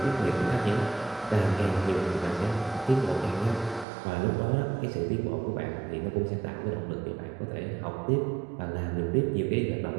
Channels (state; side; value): drops out; left; at 3.9 s